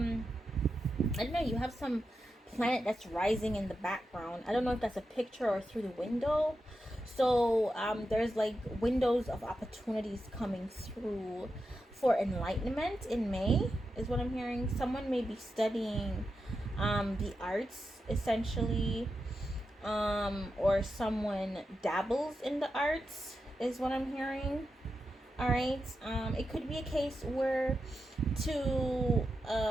don't know, you have some planet that's rising in the background. I don't know if that's a picture or through the window. So there's like windows of opportunities coming through for enlightenment in May, is what I'm hearing. Someone may be studying the arts, essentially, or someone dabbles in the arts, is what I'm hearing. All right. It could be a case where to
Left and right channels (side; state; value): both; normal; correlation 0.89